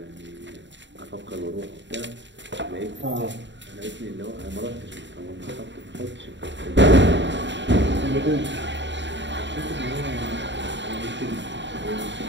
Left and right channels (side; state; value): left; late; 0.53 ms